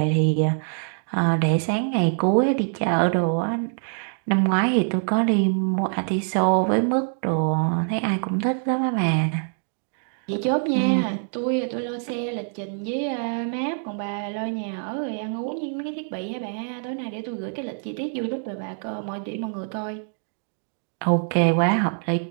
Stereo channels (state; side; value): silent; left; 62 dB below the other